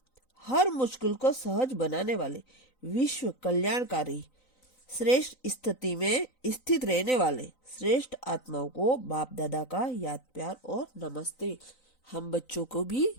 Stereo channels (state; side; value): late; right; 3.9 ms